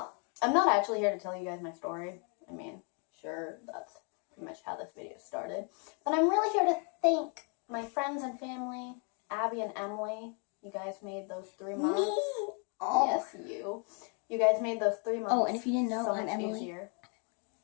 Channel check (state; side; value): quieter; right; 38.1 dB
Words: I'm not actually here to tell you guys my story. I mean, sure, that's pretty much how this video started. But I'm really here to thank my friends and family, Abby and Emily. You guys made those 3 months. Me? Oh. Yes, you. You guys made those 3 months. Oh, and if you didn't know, so I'm much Emily. easier.